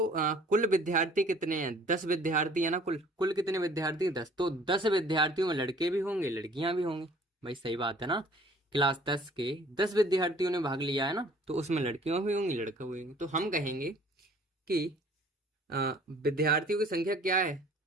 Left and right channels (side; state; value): both; normal; correlation 0.53